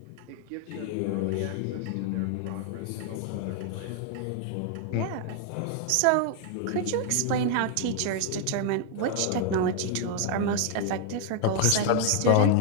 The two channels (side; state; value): both; different; correlation 0.00